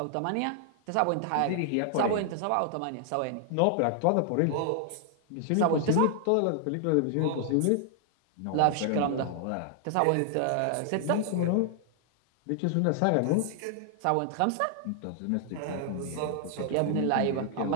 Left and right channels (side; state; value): both; different; correlation 0.00